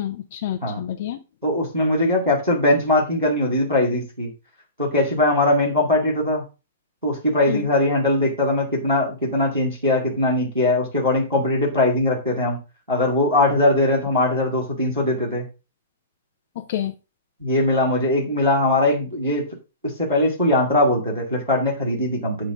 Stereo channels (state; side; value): inverted; both; correlation -0.33